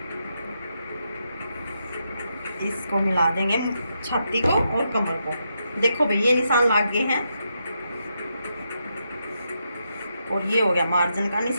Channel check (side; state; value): both; inverted; correlation -0.82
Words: इसको मिला देंगे छाती को और कमर को। देखो भाई ये निशान लग गए हैं और ये हो गया मार्जिन का